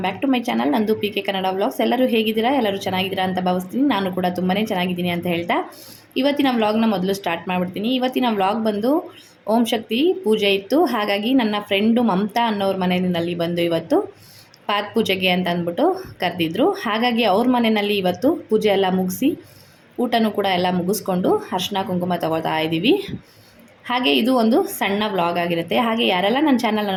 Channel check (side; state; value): both; identical; correlation 1.00